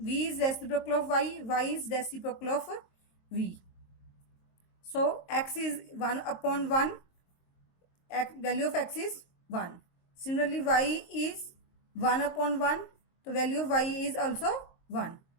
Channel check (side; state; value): right; late; 23 ms